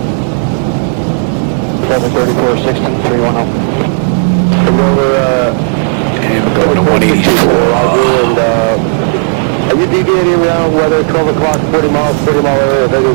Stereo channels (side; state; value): left; silent; digital silence